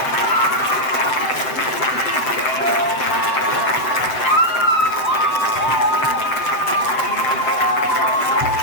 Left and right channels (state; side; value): late; right; 7.7 ms